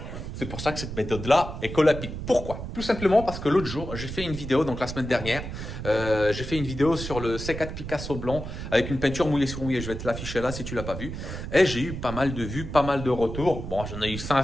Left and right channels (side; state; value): right; noise; rumble, 7 dB below the sound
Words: C'est pour ça que cette méthode-là est colle-à-pic. Pourquoi? Tout simplement parce que l'autre jour, j'ai fait une vidéo, donc la semaine dernière, j'ai fait une vidéo sur le C4 Picasso blanc avec une peinture mouillée sur mouillée. Je vais te l'afficher là si tu l'as pas vu. Et j'ai eu pas mal de vues, pas mal de retours. Bon, j'en ai eu